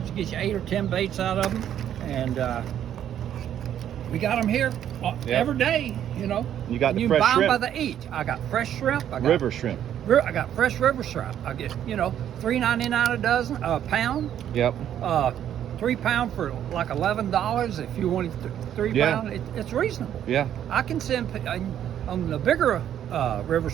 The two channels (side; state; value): left; quieter; 10.3 dB